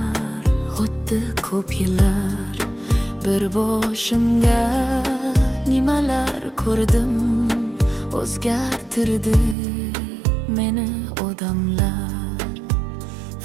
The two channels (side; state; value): left; drops out; at 9.6 s